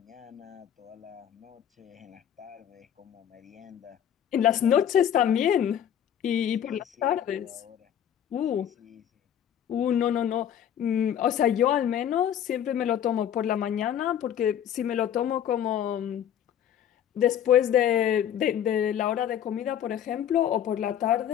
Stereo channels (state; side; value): quieter; right; 9.9 dB